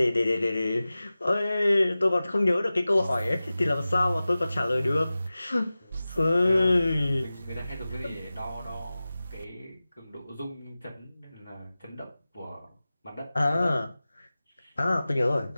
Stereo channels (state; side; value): inverted; both; correlation -0.96